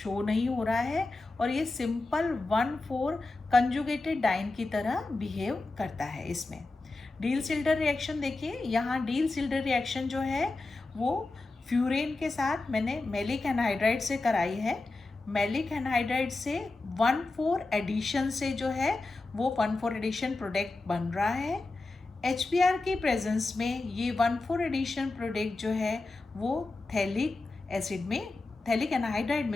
नहीं हो रहा है और ये सिंपल 1,4 कंजुगेटेड डाइन की तरह बिहेव करता है। इसमें डील-सिल्डर रिएक्शन देखिए, यहाँ डील-सिल्डर रिएक्शन जो है वो फ्यूरेन के साथ मैंने मैलिक एनहाइड्राइड से कराई है। मैलिक एनहाइड्राइड से 1,4 एडिशन से जो है वो 1,4 एडिशन प्रोडक्ट बन रहा है। HBr की प्रेजेंस में ये 1,4 एडिशन प्रोडक्ट जो है वो थैलिक एसिड में, थैलिक एनहाइड्राइड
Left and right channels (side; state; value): right; quieter; 3.3 dB